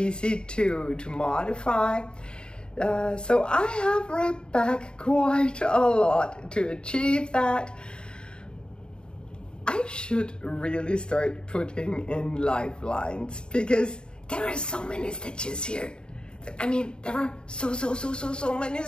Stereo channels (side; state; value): right; late; 0.050 ms